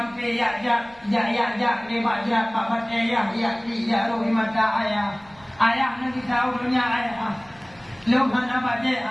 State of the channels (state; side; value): noise; right; rumble, 28 dB below the sound